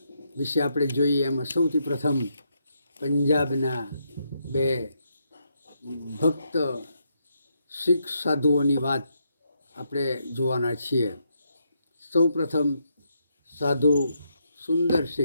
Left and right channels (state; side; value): inverted; both; correlation -0.79